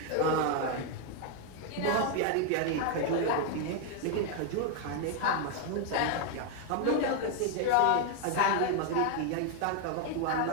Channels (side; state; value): both; different; correlation 0.01